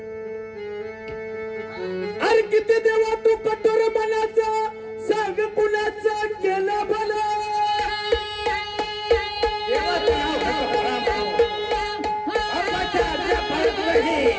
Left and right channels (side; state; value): both; identical; correlation 1.00